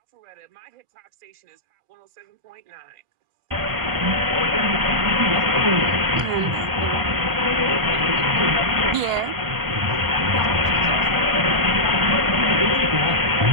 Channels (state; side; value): late; left; 1.4 ms